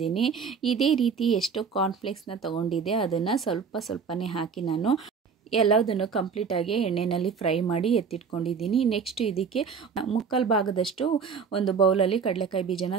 ಇದೇ ರೀತಿ ಎಷ್ಟು ಕಾರ್ನ್ಫ್ಲೆಕ್ಸ್ನ ತೊಗೊಂಡಿದ್ದೆ ಅದನ್ನು ಸ್ವಲ್ಪನೇ ಹಾಕಿ ನಾನು ಎಲ್ಲದನ್ನು ಕಂಪ್ಲೀಟಾಗಿ ಎಣ್ಣೆಯಲ್ಲಿ ಫ್ರೈ ಮಾಡಿ ಎತ್ತಿಟ್ಕೊಂಡಿದ್ದೀನಿ. ನೆಕ್ಸ್ಟ್ ಇದಕ್ಕೆ 3/4 ಭಾಗದಷ್ಟು ಒಂದು ಬೌಲಲ್ಲಿ ಕಡಲೆಕಾಯಿ ಬೀಜನ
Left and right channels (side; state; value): left; quieter; 6.0 dB